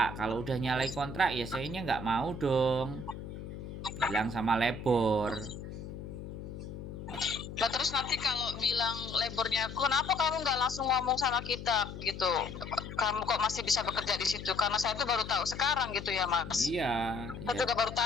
Kalau udah nyalai kontrak ya sayanya nggak mau dong. Bilang sama labor. Nah terus nanti kalau bilang labornya, kenapa kamu nggak langsung ngomong sama kita gitu? Kamu kok masih bisa bekerja di situ? Karena saya tuh baru tahu sekarang gitu ya Mas. Iya. Saya juga baru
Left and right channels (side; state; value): left; noise; hum, 10 dB below the sound